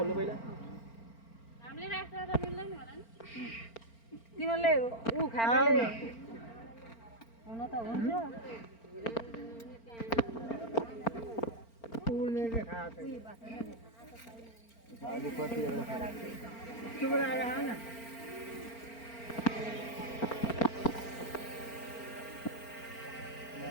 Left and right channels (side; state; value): right; late; 4.4 ms